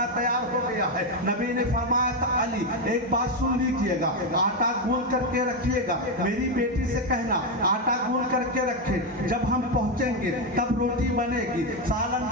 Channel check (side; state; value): both; normal; correlation 0.07